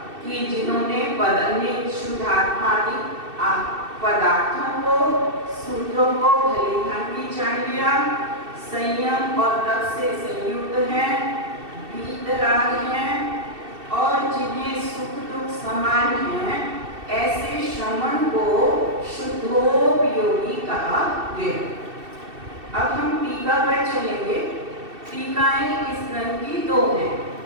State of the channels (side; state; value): left; late; 2.7 ms